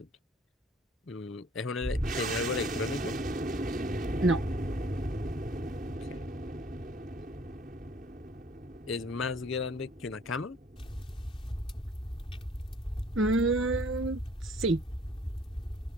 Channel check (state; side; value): normal; both; correlation 0.56